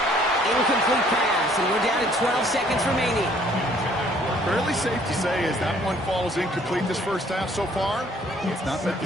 Incomplete pass, and we're down to 12 seconds remaining. Fairly safe to say as that one falls incomplete this first half so far, it's not met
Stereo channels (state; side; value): normal; both; correlation 0.60